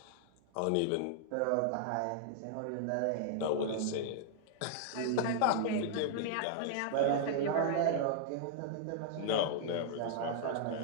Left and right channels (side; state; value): both; different; correlation -0.01